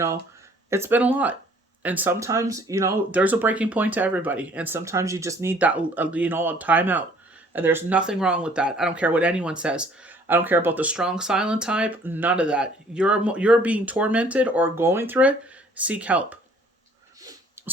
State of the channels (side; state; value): both; normal; correlation 0.57